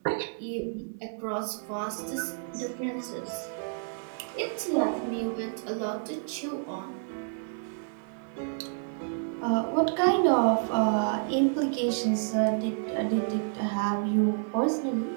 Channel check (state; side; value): silent; left; digital silence